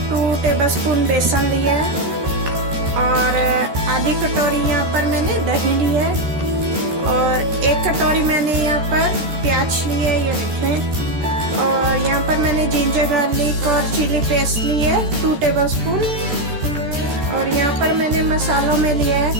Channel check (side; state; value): left; late; 13 ms